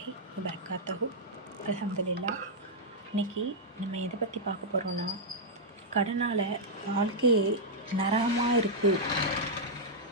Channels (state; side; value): normal; both; correlation -0.06